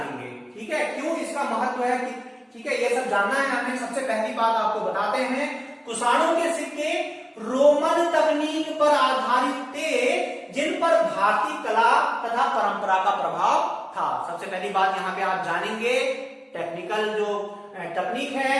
ठीक है, क्यों इसका महत्व है, ठीक है, ये सब जानना है हमें। सबसे पहली बात आपको बताते हैं, कुषाणों के सिक्के रोमन तकनीक पर आधारित थे जिन पर भारतीय कला तथा परंपरा का प्रभाव था। सबसे पहली बात यहाँ पे आप जानेंगे, टेक्निकल जो तकनीक है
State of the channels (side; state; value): both; identical; correlation 1.00